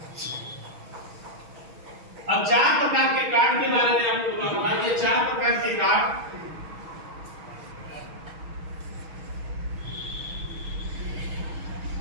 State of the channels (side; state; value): left; late; 6.3 ms